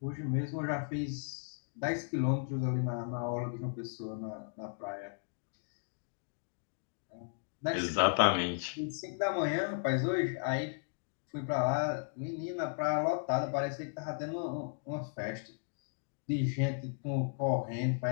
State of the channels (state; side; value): silent; right; digital silence